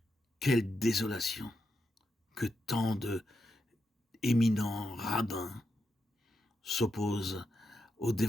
quelle désolation que tant de éminents rabbins s'opposent au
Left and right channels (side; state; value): both; normal; correlation 0.85